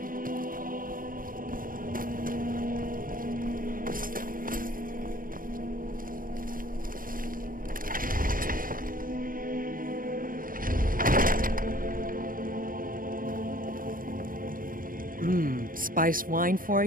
Spiced wine for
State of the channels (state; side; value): late; left; 0.40 ms